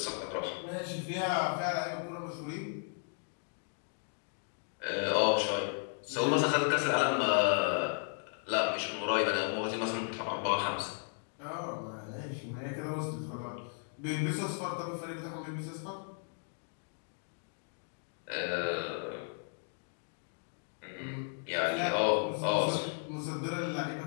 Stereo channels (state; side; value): silent; right; 54 dB below the other